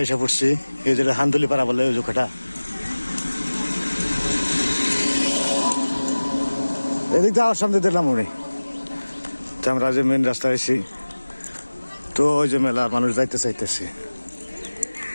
এসে পড়ছি এই যে হান্দুলিপাড়া বলে ওই জোখাটা এদিক দিয়ে আমার সামনে দিলাম উনি তো আমরা যে মেন রাস্তা আছি তো ওই যে মেলার মানুষ যাইতে চাইতেছে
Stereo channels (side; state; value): both; inverted; correlation -1.00